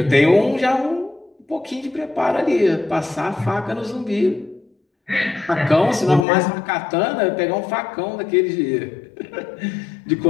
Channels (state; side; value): drops out; right; at 6.2 s